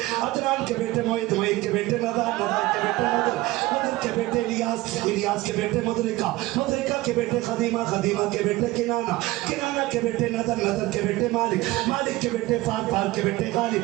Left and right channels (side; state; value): left; quieter; 18.6 dB